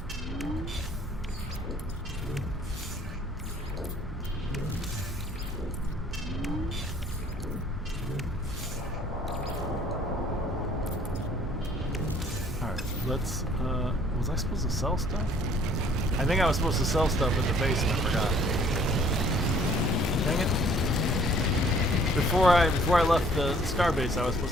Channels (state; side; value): normal; both; correlation 0.57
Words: Alright, let's, was I supposed to sell stuff? I think I was supposed to sell stuff at the base and I forgot. Dang it. Before I left the starbase, I was